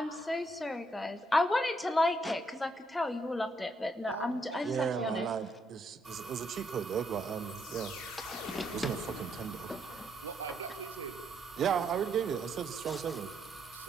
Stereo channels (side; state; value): both; normal; correlation 0.75